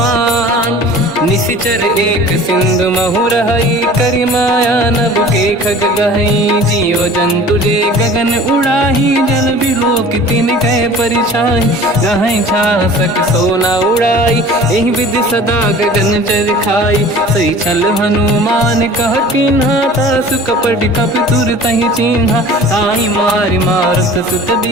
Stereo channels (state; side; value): normal; both; correlation 0.44